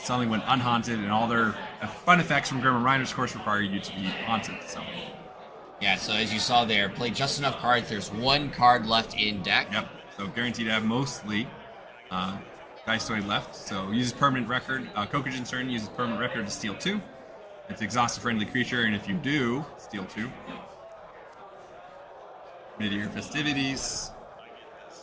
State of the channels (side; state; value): both; identical; correlation 1.00